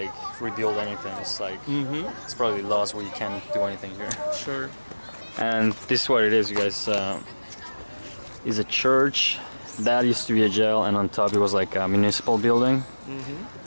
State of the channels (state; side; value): inverted; both; correlation -1.00